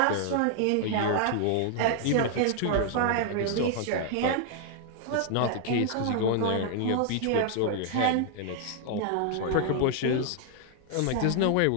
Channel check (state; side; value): different; both; correlation 0.00